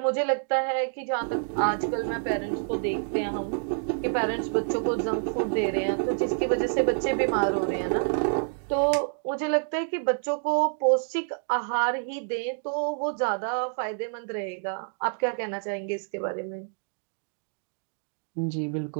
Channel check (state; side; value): silent; left; 60 dB below the other